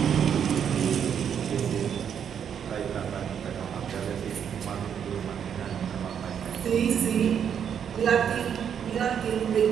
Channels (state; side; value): quieter; left; 8.2 dB